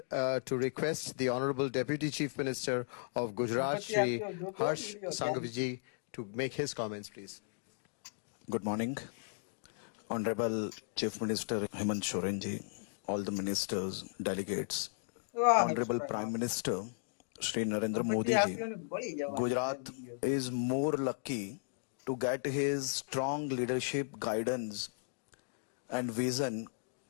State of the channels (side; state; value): right; silent; digital silence